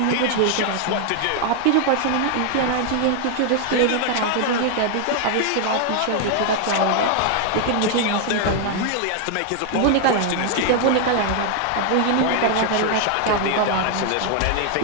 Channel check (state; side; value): different; both; correlation 0.00